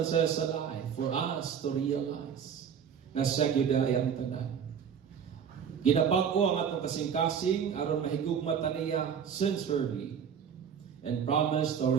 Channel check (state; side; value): quieter; left; 7.6 dB